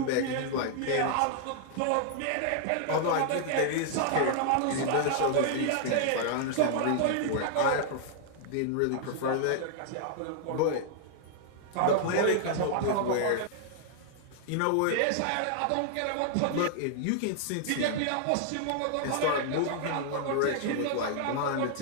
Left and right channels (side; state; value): both; different; correlation -0.01